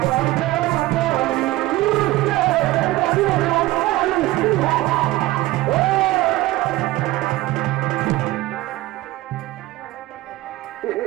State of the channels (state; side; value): quieter; left; 17.9 dB